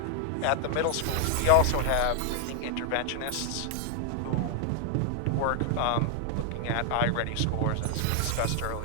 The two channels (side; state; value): both; different; correlation 0.00